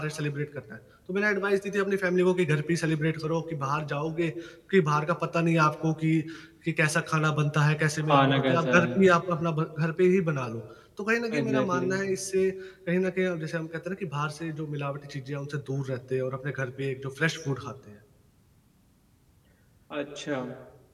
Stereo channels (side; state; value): both; identical; correlation 1.00